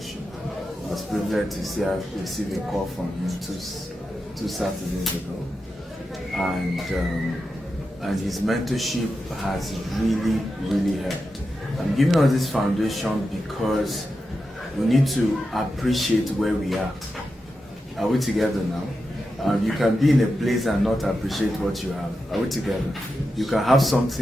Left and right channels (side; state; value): both; normal; correlation 0.89